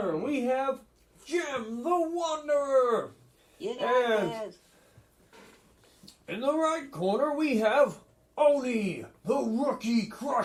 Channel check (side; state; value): both; identical; correlation 1.00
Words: we have Jim the Wanderer. You And- this. In the right corner, we have Oni the Rookie